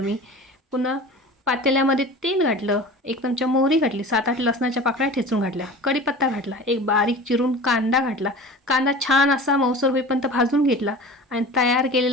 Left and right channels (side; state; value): both; normal; correlation 0.38